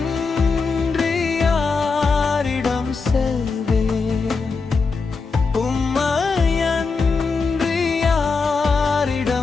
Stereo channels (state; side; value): quieter; right; 4.5 dB